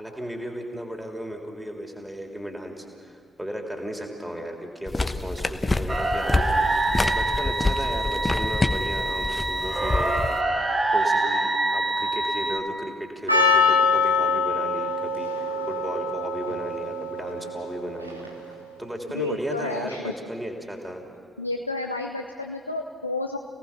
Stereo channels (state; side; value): normal; both; correlation 0.63